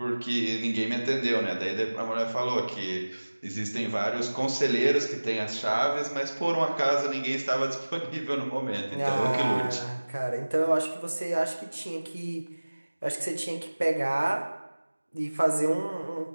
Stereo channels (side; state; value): both; inverted; correlation -1.00